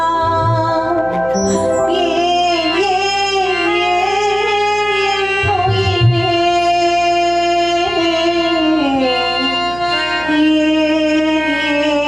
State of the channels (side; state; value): right; noise; hum, 16 dB below the sound